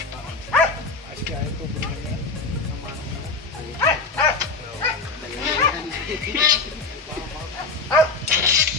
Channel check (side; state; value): right; quieter; 3.9 dB